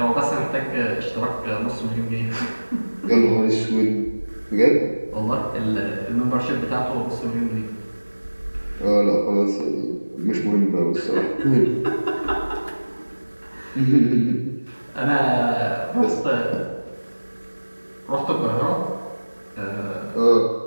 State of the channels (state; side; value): inverted; both; correlation -1.00